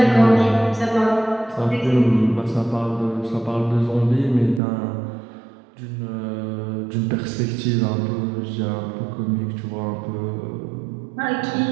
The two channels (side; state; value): left; drops out; at 4.6 s